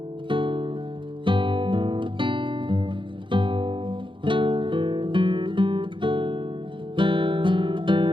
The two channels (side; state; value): left; late; 0.24 ms